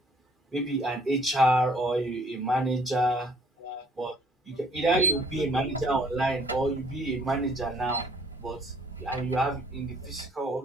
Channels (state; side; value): normal; both; correlation 0.60